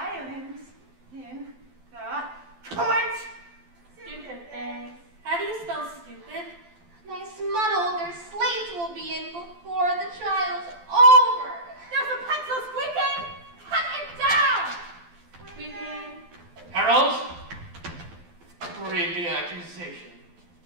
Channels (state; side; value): late; left; 12 ms